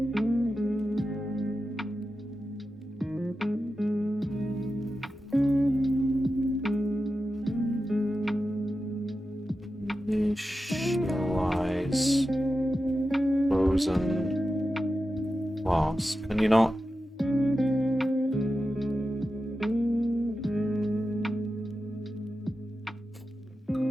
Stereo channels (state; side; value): normal; both; correlation 0.91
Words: Initialize frozen class. Can you not?